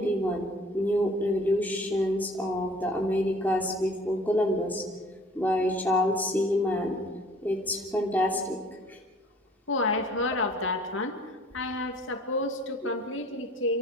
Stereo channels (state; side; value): normal; both; correlation 0.51